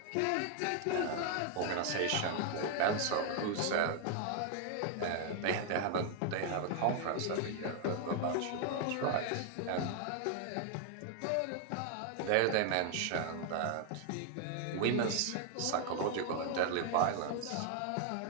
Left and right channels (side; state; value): both; different; correlation 0.00